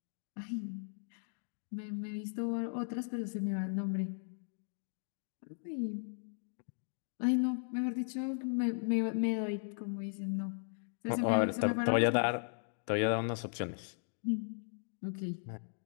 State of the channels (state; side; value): silent; right; digital silence